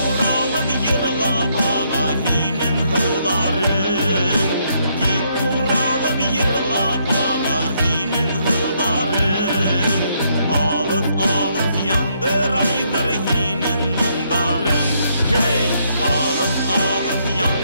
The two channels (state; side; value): inverted; both; correlation -0.73